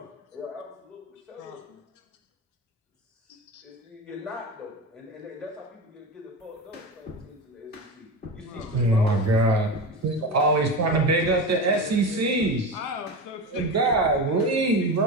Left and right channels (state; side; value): normal; both; correlation 0.23